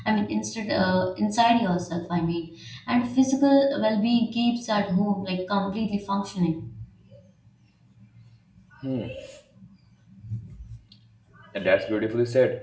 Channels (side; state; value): both; identical; correlation 1.00